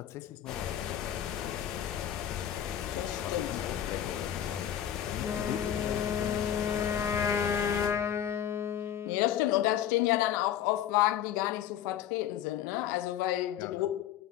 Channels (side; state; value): right; quieter; 10.6 dB